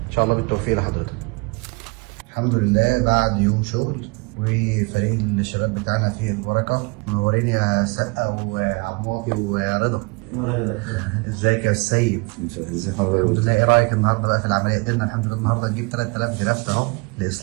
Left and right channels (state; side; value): quieter; left; 29.4 dB